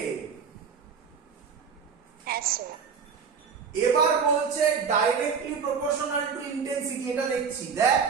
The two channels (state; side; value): quieter; left; 6.2 dB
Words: এবার বলছে ডাইরেক্টলি প্রপোর্শনাল টু ইন্টেন্সিটি, এটা দেখছি, দেখ